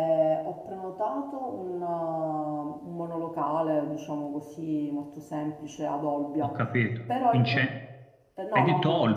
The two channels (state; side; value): identical; both; correlation 1.00